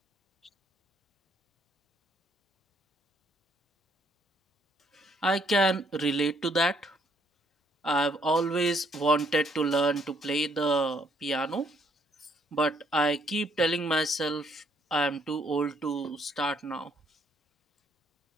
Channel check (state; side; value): normal; both; correlation 0.68